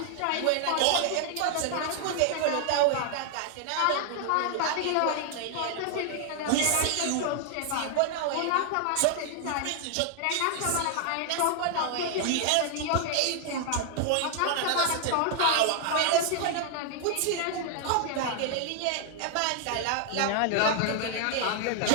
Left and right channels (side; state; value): both; different; correlation 0.00